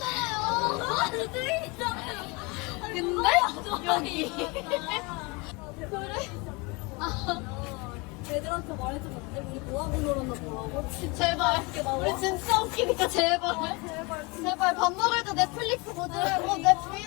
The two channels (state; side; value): quieter; right; 27.6 dB